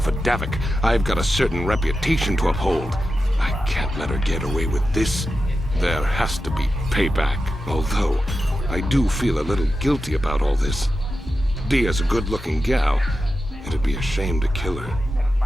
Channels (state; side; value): normal; both; correlation 0.91